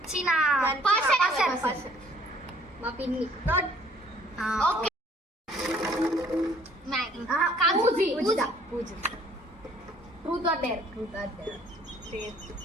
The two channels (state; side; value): normal; both; correlation 0.58